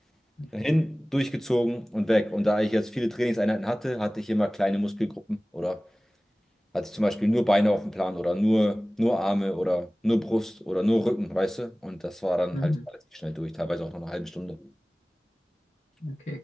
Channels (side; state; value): both; normal; correlation 0.98